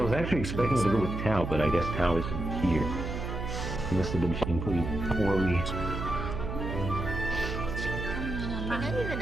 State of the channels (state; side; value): noise; right; hum, 5 dB below the sound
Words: was actually expecting to go with Tao, but I guess Tao isn't here. He must have been pretty poorly. They're not even